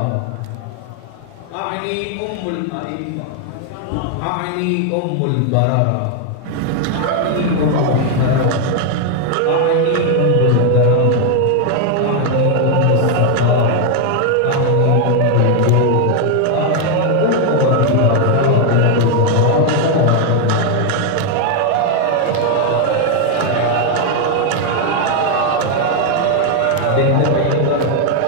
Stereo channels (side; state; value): both; different; correlation 0.01